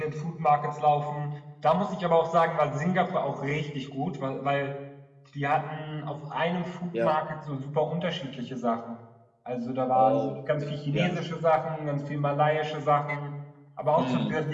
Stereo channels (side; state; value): both; identical; correlation 1.00